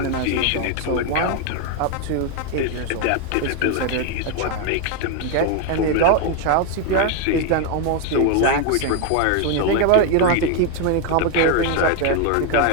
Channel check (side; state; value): both; different; correlation 0.01